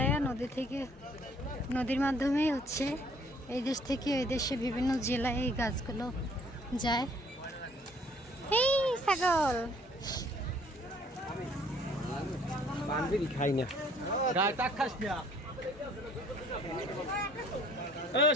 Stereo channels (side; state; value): both; normal; correlation 0.59